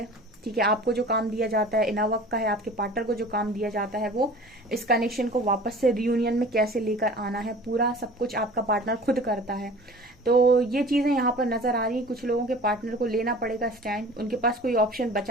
ठीक है। आपको जो काम दिया जाता है इनर वर्क का है, आपके पार्टनर को जो काम दिया जाता है वो इस कनेक्शन को वापस से रियूनियन में कैसे लेकर आना है, पूरा सब कुछ आपका पार्टनर खुद करता है। तो ये चीजें यहाँ पर नजर आ रही है। कुछ लोगों के पार्टनर को लेना पड़ेगा स्टैंड, उनके पास कोई ऑप्शन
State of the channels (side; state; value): both; normal; correlation 0.43